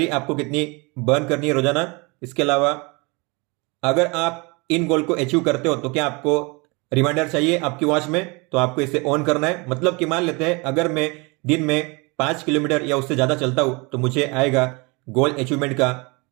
आपको कितनी बर्न करनी है रोजाना। इसके अलावा अगर आप इन गोल को अचीव करते हो तो क्या आपको रिमाइंडर चाहिए आपकी वॉच में, तो आपको इसे ऑन करना है। मतलब कि मान लेते हैं अगर मैं दिन में 5 किलोमीटर या उससे ज्यादा चलता हूं तो मुझे आएगा गोल अचीवमेंट का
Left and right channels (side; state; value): left; quieter; 28.0 dB